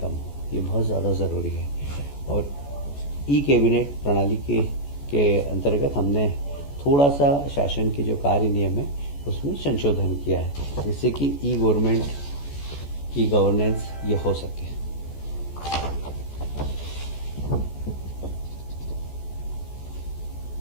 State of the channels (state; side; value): late; right; 14 ms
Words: हो, ये बहुत ज़्यादा ज़रूरी है। और ई कैबिनेट प्रणाली के अंतर्गत हमने थोड़ा सा शासन के जो कार्य नियम है उसमें संशोधन किया है, जिससे कि ई गवर्नमेंट, ई गवर्नेंस ये हो सके।